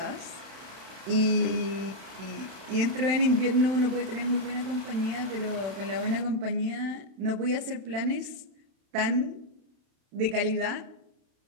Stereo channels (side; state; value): left; late; 31 ms